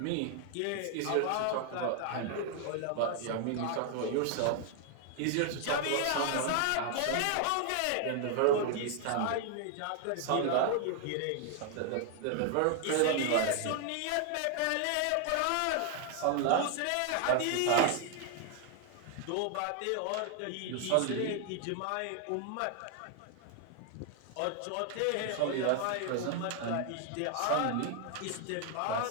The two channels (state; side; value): different; both; correlation 0.00